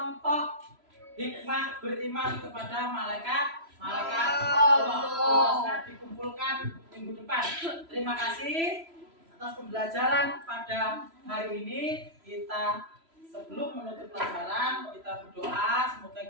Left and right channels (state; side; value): late; left; 3.0 ms